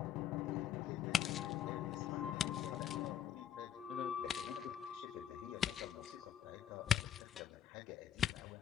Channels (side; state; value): right; quieter; 9.5 dB